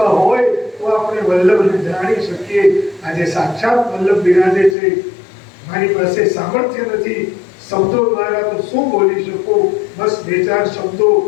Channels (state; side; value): drops out; right; at 4.8 s